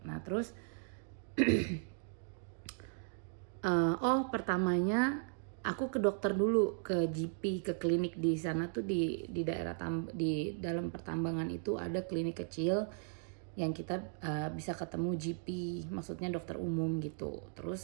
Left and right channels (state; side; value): silent; left; 53 dB below the other